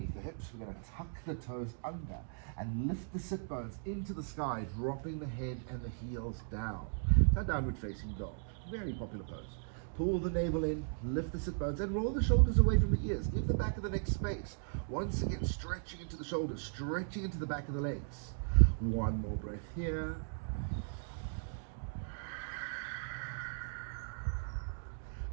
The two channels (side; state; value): left; silent; digital silence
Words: the hips. We're going to tuck the toes under and lift the sit bones into the sky, dropping the head and the heels down. So downward facing dog. Very popular pose. Pull the navel in, lift the sit bones, and roll the shoulders away from the ears. Give the back of the neck space. Once again, stretching into the shoulders, stretching into the back of the legs. 1 more breath here.